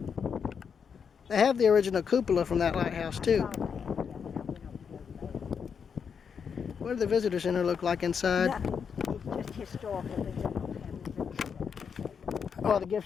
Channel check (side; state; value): right; quieter; 6.6 dB